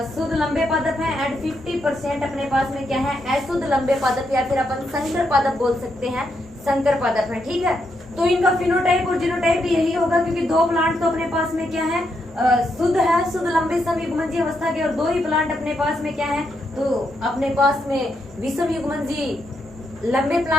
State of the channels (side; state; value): left; noise; hum, 24 dB below the sound